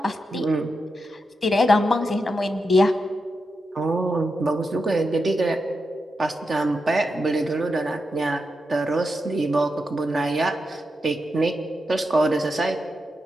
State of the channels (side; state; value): both; normal; correlation 0.87